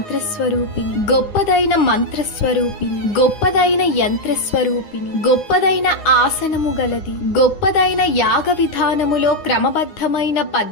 గొప్పదైన మంత్రస్వరూపిణి, గొప్పదైన యంత్రస్వరూపిణి, గొప్పదైన ఆసనము గలది, గొప్పదైన యాగ విధానములో క్రమబద్ధమైన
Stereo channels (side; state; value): right; late; 9.7 ms